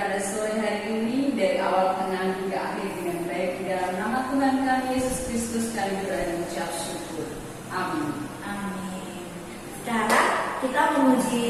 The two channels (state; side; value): identical; both; correlation 1.00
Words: sore hari ini dari awal, tengah, hingga akhir dengan baik di dalam nama Tuhan kami Yesus Kristus kami berdoa dan mengucap syukur. Amin. Amin. Sekarang kita